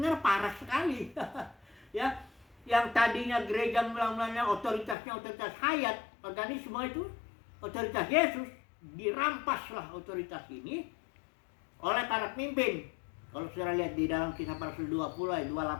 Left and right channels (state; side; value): drops out; right; at 5.0 s